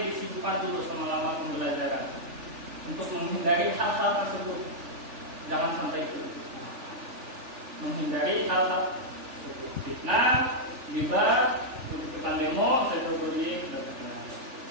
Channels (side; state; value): left; late; 3.4 ms